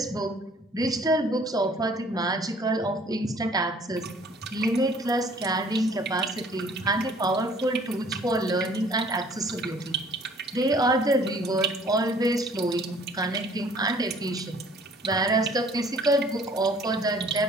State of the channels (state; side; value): normal; both; correlation 0.55